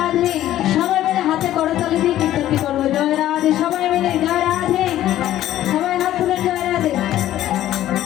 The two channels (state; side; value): quieter; right; 13.2 dB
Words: সবাই মিলে হাতে করতালি দিয়ে কীর্তনটি করবো জয় রাধে, সবাই মিলে জয় রাধে, সবাই হাত তুলুন জয় রাধে।